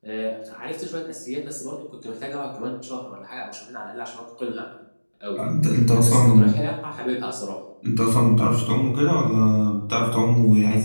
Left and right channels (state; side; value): inverted; both; correlation -1.00